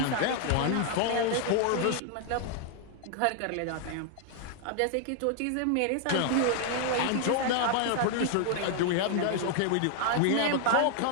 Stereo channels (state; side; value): different; both; correlation 0.00